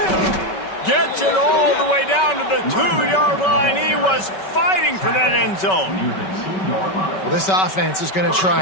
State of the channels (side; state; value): right; late; 5.3 ms